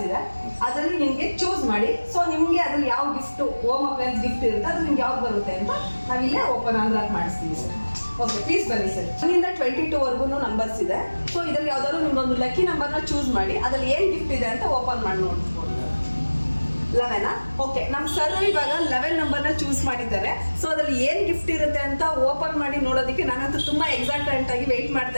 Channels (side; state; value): both; inverted; correlation -1.00